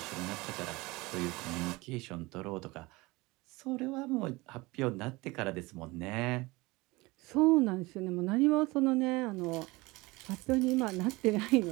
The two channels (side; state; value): left; quieter; 22.5 dB